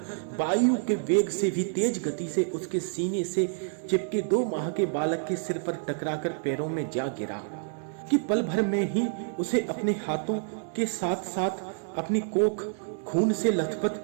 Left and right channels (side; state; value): left; silent; digital silence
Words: वायु के वेग से भी तेज गति से उसके सीने से चिपके 2 माह के बालक के सिर पर टकराकर पैरों में जा गिरा कि पल भर में ही उसे अपने हाथों के साथ साथ अपनी कोख खून से